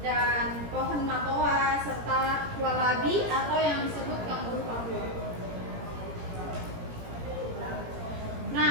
pohon matoa, serta wallaby atau yang disebut kanguru Papua.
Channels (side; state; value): left; late; 17 ms